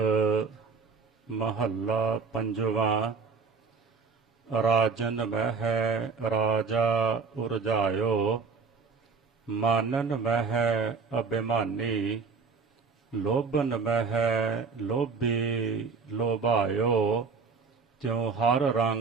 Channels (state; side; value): quieter; left; 5.0 dB